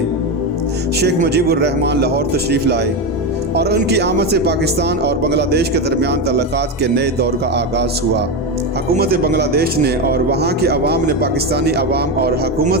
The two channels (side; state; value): both; normal; correlation 0.14